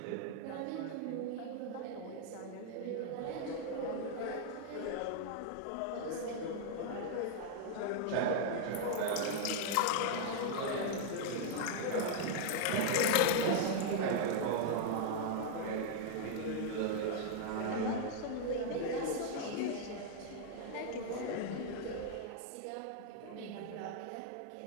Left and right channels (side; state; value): both; different; correlation -0.01